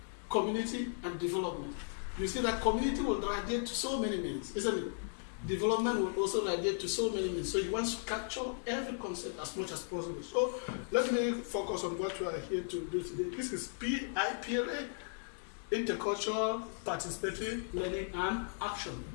community and development, you see that community will radiate to so many meanings, isn't it? Development will also radiate to so many meanings. So you want to capture every concept as much as possible. So let me focus on what we are here to do today. This is IPLA, Intercultural Participatory Learning and Action.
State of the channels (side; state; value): right; silent; digital silence